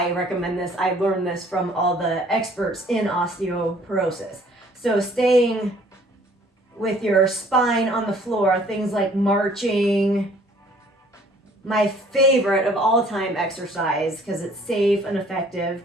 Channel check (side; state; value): both; normal; correlation 0.57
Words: recommend this, I learned this from all the experts in osteoporosis. So staying with your spine on the floor, things like marching, my favorite of all time exercise because it's safe and effective